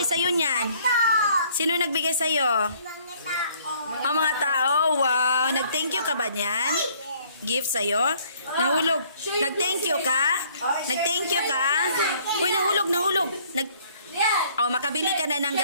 sa'yo niyan? Sino nagbigay sa'yo? Ang mga tao. Wow. Nag-thank you ka ba niyan? Gift sa'yo? Nahulog. Nag-thank you ka? Nag-thank you ka? Uy, nahulog. Makabili ka na ng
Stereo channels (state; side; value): inverted; both; correlation -0.60